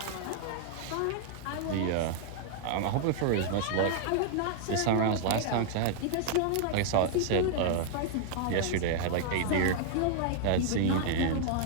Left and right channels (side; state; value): both; different; correlation -0.01